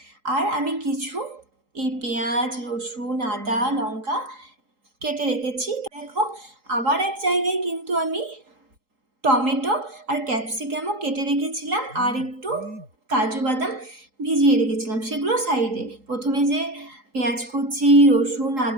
আর আমি কিছু এই পেঁয়াজ, রসুন, আদা, লঙ্কা কেটে রেখেছি। দেখো, আবার এক জায়গায় কিন্তু আমি টমেটো আর ক্যাপসিকামও কেটে রেখেছিলাম, আর একটু কাজু বাদাম ভিজিয়ে রেখেছিলাম, সেগুলো সাইডে। প্রথমে যে পেঁয়াজ কুচি, রসুন,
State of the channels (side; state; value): left; late; 4.7 ms